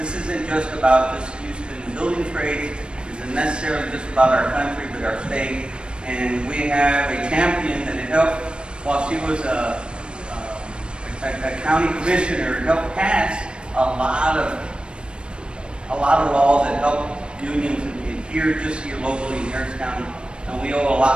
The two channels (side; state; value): left; late; 0.055 ms